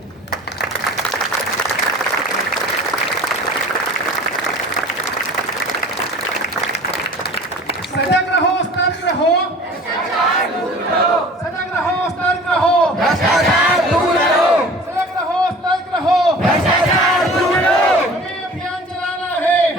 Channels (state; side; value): normal; both; correlation 0.44